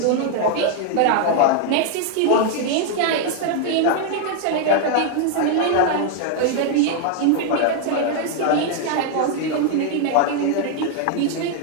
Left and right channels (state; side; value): different; both; correlation 0.00